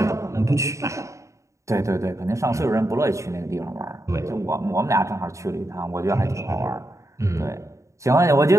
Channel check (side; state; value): left; late; 0.15 ms